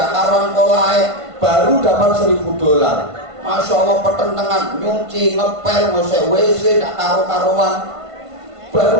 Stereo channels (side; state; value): left; late; 1.5 ms